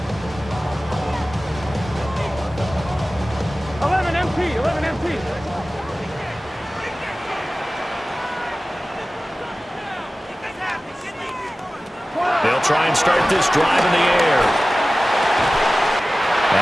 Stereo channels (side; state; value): both; normal; correlation 0.96